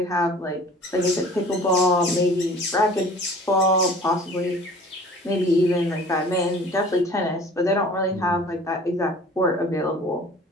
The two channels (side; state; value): both; normal; correlation 0.47